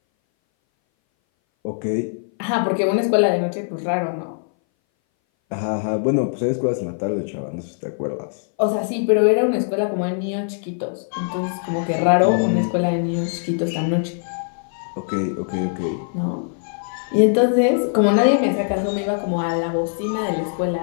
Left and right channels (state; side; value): silent; right; 60 dB below the other